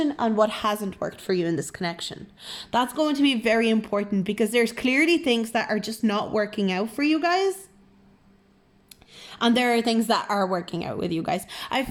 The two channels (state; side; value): identical; both; correlation 1.00